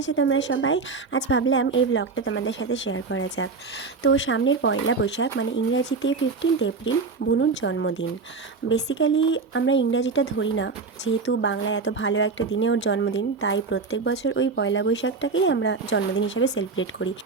তোমরা সবাই? আজ ভাবলাম এই ব্লগটা তোমাদের সাথে শেয়ার করা যাক। তো সামনের পয়লা বৈশাখ মানে ইংরাজিতে 15 এপ্রিল বুনুর জন্মদিন। বেসিক্যালি আমরা ইংরাজিটা ধরি না, যেহেতু বাংলায় এত ভালো একটা দিনে ওর জন্মদিন, তাই প্রত্যেক বছর ওই পয়লা বৈশাখটাকেই আমরা জন্মদিন হিসেবে সেলিব্রেট করি।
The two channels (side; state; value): left; quieter; 4.5 dB